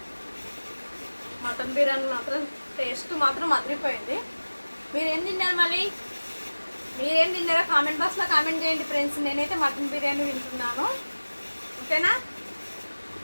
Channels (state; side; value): inverted; both; correlation -1.00